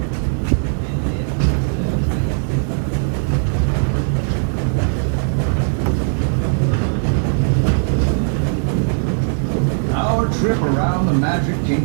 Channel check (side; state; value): left; silent; digital silence